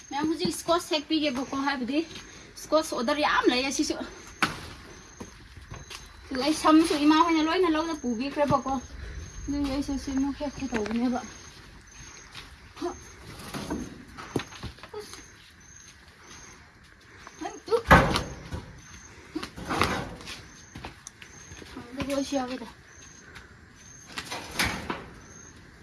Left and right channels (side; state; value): both; identical; correlation 1.00